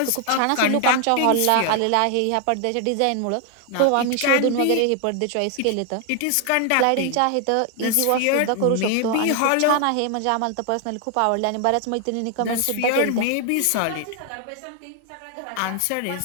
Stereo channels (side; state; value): both; different; correlation 0.00